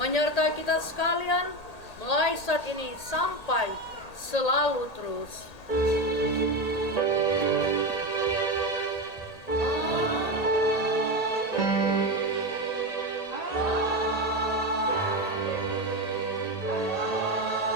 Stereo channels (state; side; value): late; right; 1.8 ms